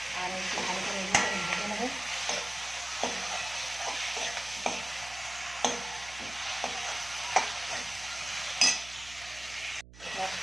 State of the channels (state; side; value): noise; right; hum, 18 dB below the sound